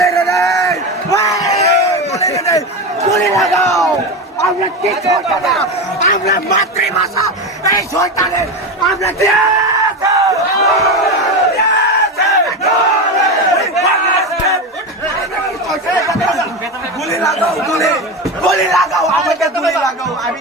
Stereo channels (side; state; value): both; normal; correlation 0.19